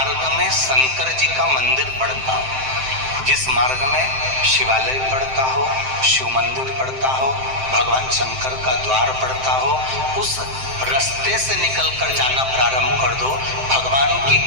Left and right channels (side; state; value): left; late; 7.7 ms